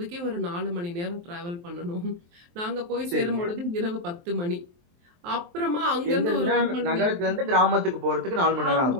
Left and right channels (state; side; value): late; left; 23 ms